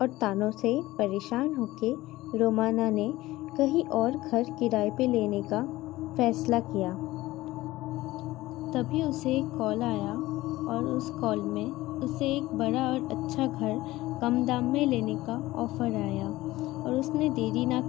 और तानों से परेशान होके रोमाना ने कहीं और घर किराए पे लेने का फैसला किया। तभी उसे एक कॉल आया और उस कॉल में उसे एक बड़ा और अच्छा घर कम दाम में लेने का ऑफ़र आया और उसने देरी ना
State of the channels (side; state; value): right; quieter; 17.8 dB